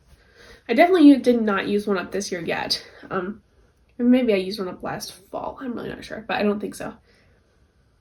I definitely did not use one up this year yet. Maybe I used one up last fall. I'm really not sure, but I don't think so.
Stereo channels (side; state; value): both; identical; correlation 1.00